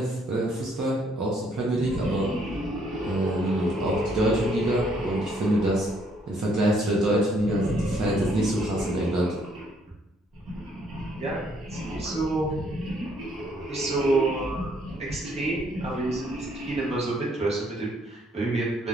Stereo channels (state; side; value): normal; both; correlation 0.67